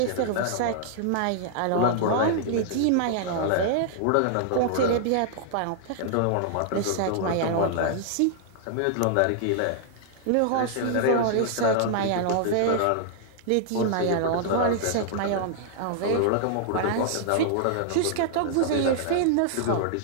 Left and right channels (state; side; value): different; both; correlation -0.01